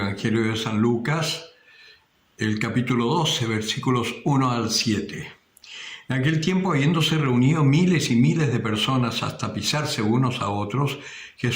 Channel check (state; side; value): identical; both; correlation 1.00